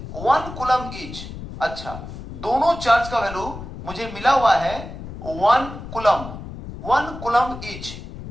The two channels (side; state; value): left; noise; rumble, 11 dB below the sound